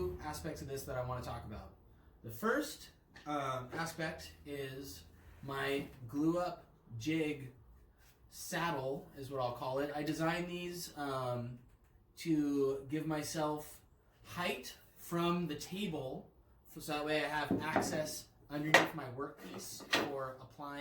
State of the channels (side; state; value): both; identical; correlation 1.00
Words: aspects of this that I want to talk about. The first aspect is my glue up jig saddle is what I'll call it. I designed these to give myself height from the table so that way I have access underneath my workpiece for